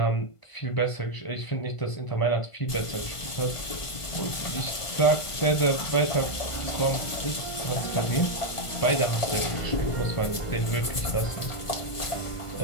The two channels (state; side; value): late; right; 1.5 ms